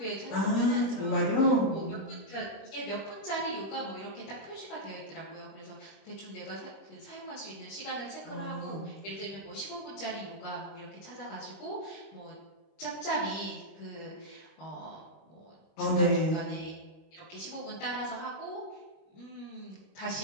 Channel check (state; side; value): late; right; 26 ms